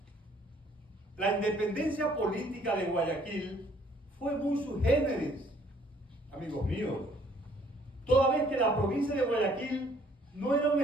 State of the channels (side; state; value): both; normal; correlation 0.61